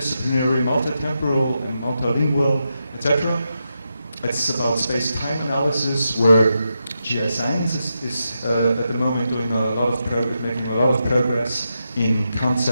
multitemporal, and multilingual, etc. It's about space-time analysis, where GI science is at the moment doing making a lot of progress in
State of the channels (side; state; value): both; inverted; correlation -0.86